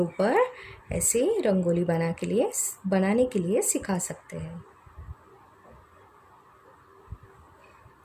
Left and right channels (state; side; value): identical; both; correlation 1.00